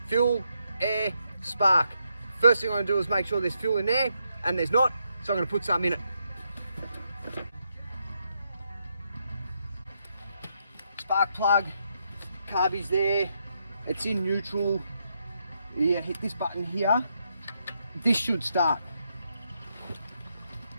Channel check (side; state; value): both; inverted; correlation -0.79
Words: fuel, air, spark. First thing I'm going to do is make sure there's fuel in there, and there's not, so I'm going to put some in it. Spark plug, carby's there, it's in neutral. You hit this button here, this should start.